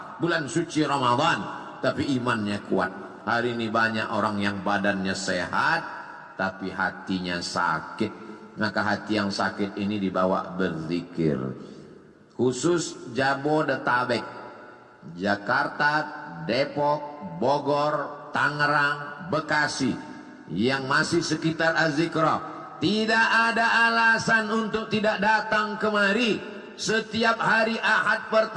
bulan suci Ramadan, tapi imannya kuat. Hari ini banyak orang yang badannya sehat tapi hatinya sakit. Maka hati yang sakit ini dibawa berzikir. Khusus Jabodetabek, Jakarta, Depok, Bogor, Tangerang, Bekasi yang masih sekitar Az-Zikra, tidak ada alasan untuk tidak datang kemari setiap hari Ahad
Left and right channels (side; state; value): both; identical; correlation 1.00